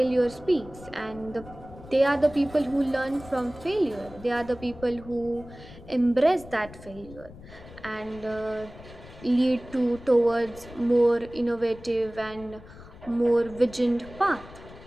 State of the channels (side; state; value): left; noise; rumble, 18 dB below the sound